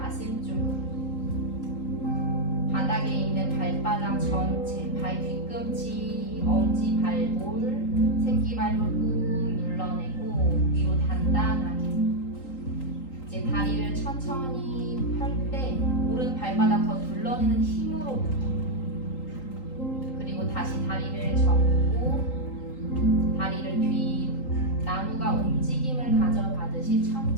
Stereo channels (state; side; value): late; right; 3.8 ms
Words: 쪽으로. 바닥에 있는 발바닥 전체, 발 뒤꿈치, 엄지 발볼, 새끼발볼 꾹 눌러내고 위로 단단하게. 이제 다리를 천천히 펼 때 오른 발바닥 더 눌러내는 힘으로부터. 그리고 다시 다리를 접고 다리를 뒤, 나무가 움직임을 가져가듯이